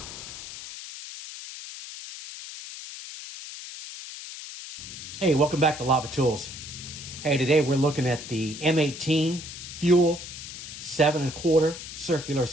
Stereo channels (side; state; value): left; noise; hiss, 11 dB below the sound